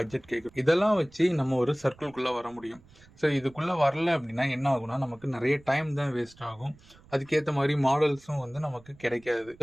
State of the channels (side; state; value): right; noise; rumble, 26 dB below the sound